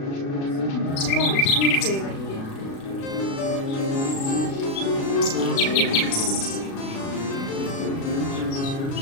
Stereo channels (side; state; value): right; late; 36 ms